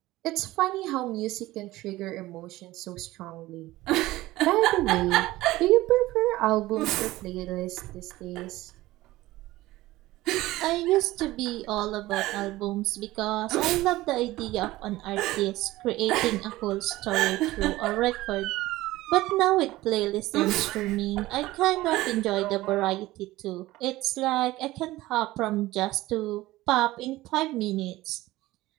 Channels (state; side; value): quieter; left; 17.6 dB